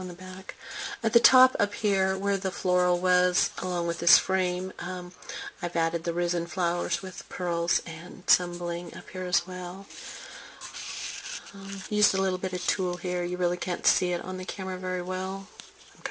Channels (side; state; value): both; identical; correlation 1.00